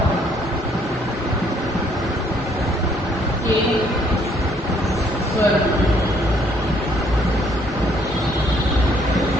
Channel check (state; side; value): normal; both; correlation 0.65